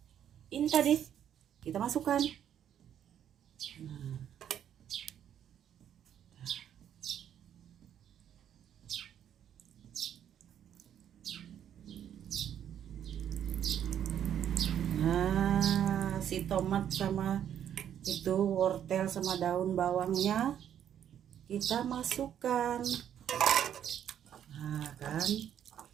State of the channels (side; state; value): left; quieter; 9.8 dB